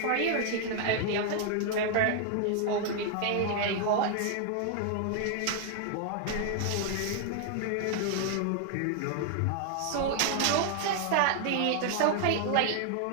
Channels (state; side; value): different; both; correlation 0.00